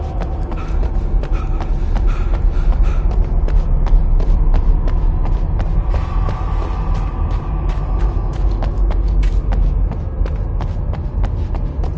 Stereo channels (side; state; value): both; identical; correlation 1.00